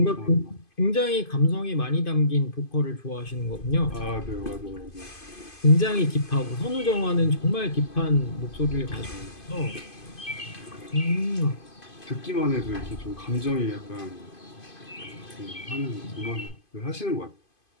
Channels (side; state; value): right; late; 2.5 ms